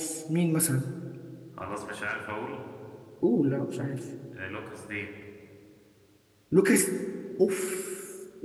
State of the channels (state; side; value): identical; both; correlation 1.00